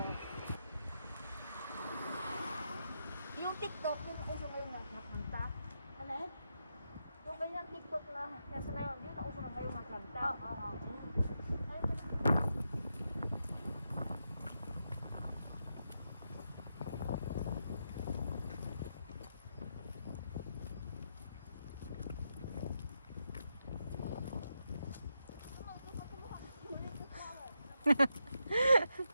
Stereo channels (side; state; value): both; inverted; correlation -0.84